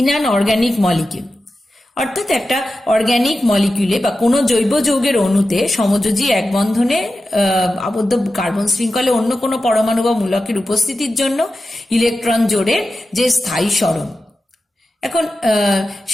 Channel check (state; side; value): normal; both; correlation 0.92